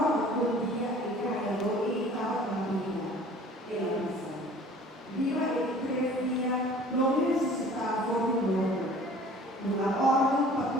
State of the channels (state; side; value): normal; both; correlation 0.49